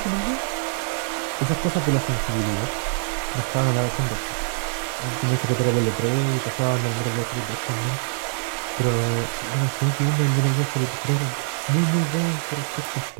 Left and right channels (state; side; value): silent; left; digital silence